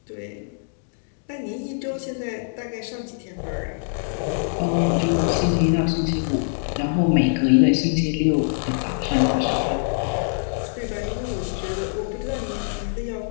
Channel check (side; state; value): right; silent; digital silence